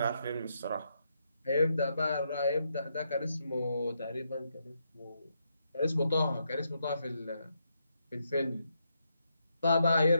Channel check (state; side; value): inverted; both; correlation -0.80